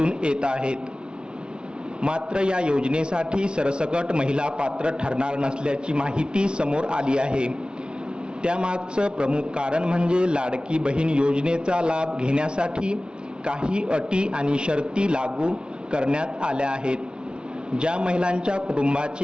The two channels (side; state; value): left; late; 0.054 ms